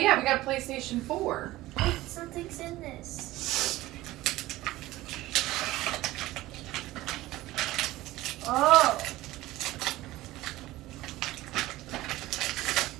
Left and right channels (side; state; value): left; quieter; 17.3 dB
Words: we got a PlayStation 4. Wait, something's in this. Oh.